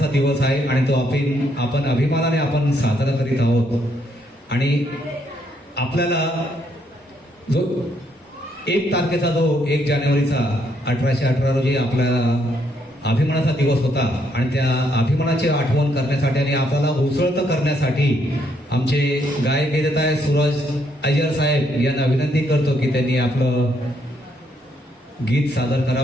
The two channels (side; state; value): both; normal; correlation 0.73